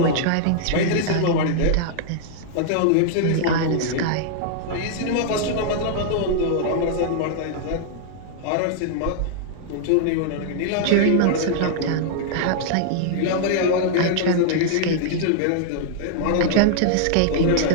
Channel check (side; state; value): both; different; correlation -0.01